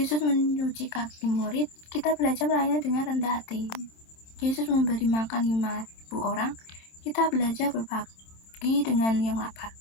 mencuci kaki murid, kita belajar melayani dengan rendah hati. Yesus memberi makan 5.000 orang, kita belajar berbagi dengan yang lapar.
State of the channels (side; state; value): right; late; 27 ms